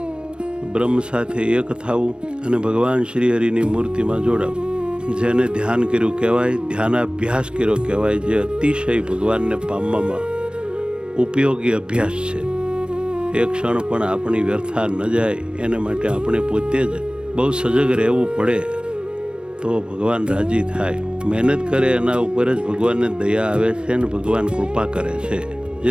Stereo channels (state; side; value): late; left; 0.055 ms